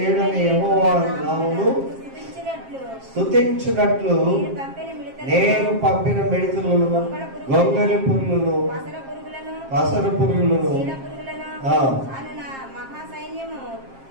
యెహోవా నామమును స్తుతించునట్లు నేను పంపిన మిడతలను, గొంగళి పురుగులను, పసర పురుగులను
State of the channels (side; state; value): left; late; 7.5 ms